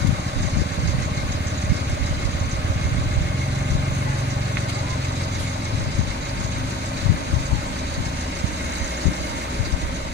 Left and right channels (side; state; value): both; normal; correlation 0.41